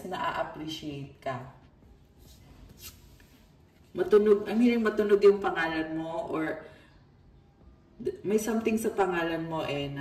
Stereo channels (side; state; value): both; identical; correlation 1.00